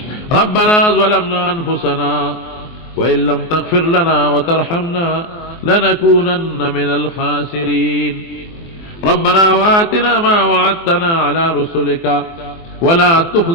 ربنا ظلمنا انفسنا وإن لم تغفر لنا وترحمنا لنكونن من الخاسرين. ربنا وآتنا ما وعدتنا على رسلك ولا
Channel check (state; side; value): late; right; 24 ms